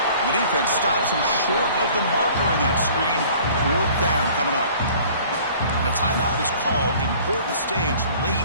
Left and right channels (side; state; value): both; inverted; correlation -0.51